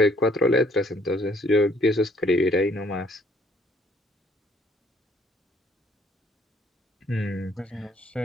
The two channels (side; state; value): both; normal; correlation 0.63